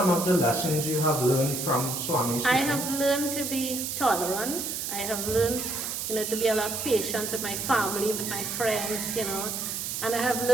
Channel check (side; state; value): right; noise; hiss, 4 dB below the sound